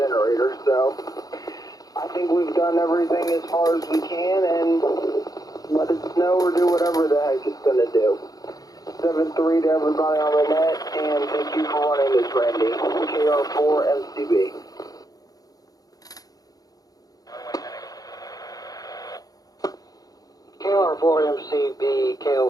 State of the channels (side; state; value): right; late; 0.18 ms